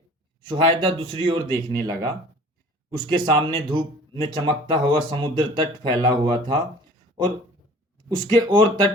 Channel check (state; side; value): normal; both; correlation 0.47